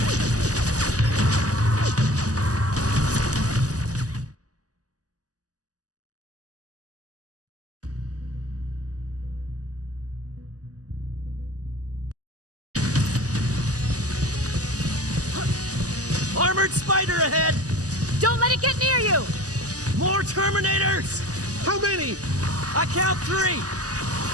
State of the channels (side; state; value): left; late; 0.67 ms